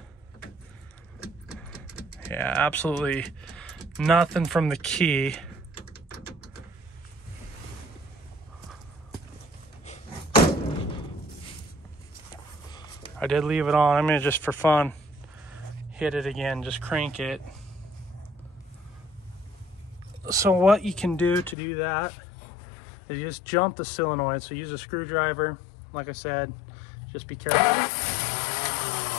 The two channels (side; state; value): right; drops out; at 21.6 s